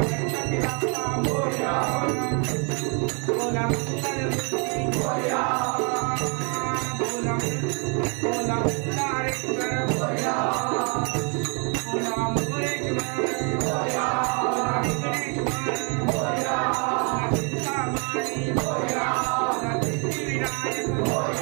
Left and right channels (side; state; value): left; quieter; 35.7 dB